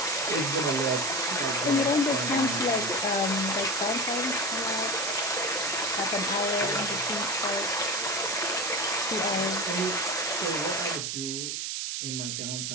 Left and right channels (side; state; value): right; noise; hiss, 2 dB below the sound